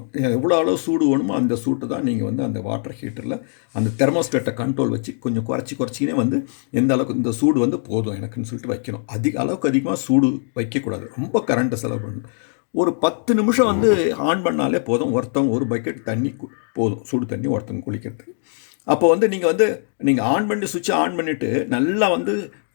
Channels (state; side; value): silent; right; digital silence